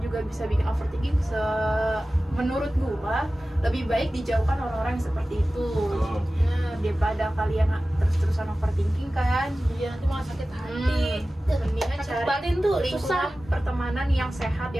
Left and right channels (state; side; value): normal; both; correlation 0.96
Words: bisa bikin overthinking. Menurut gue lebih baik dijauhkan orang-orang yang seperti itu. Betul. Daripada kalian terus-terusan overthinking kan. Iya, nanti malah sakit hati. Mendingan Sakit cari batin tuh susah. lingkungan pertemanan yang sehat,